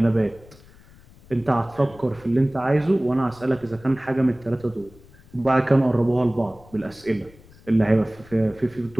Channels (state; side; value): noise; left; rumble, 24 dB below the sound